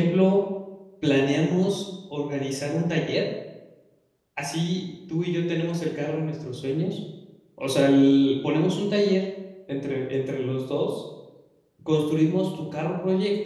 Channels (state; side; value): identical; both; correlation 1.00